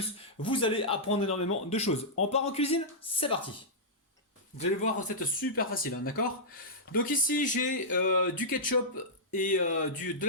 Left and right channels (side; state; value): both; normal; correlation -0.12